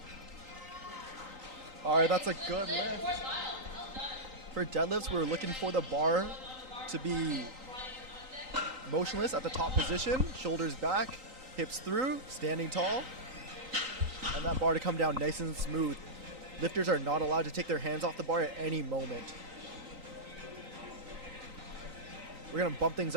All right, that's a good lift. For deadlifts, we're looking for the bar to be motionless at the top position, shoulders back, hips through, standing tall, and that bar to come down nice and smooth. Lifters are not allowed to take their hands off the bar at any moment. We're gonna bump things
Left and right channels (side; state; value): left; late; 3.9 ms